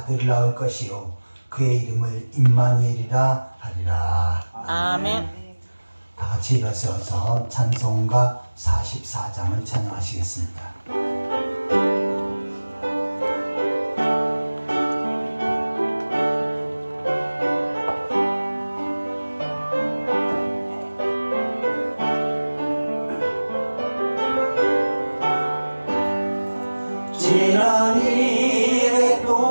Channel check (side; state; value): both; inverted; correlation -1.00